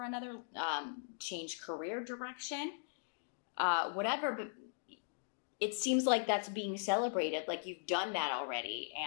another. Change career direction. Whatever. But it seems like that's being celebrated. Like you've done that already.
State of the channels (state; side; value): silent; right; digital silence